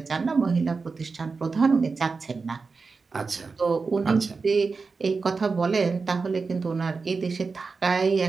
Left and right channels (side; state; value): left; quieter; 4.5 dB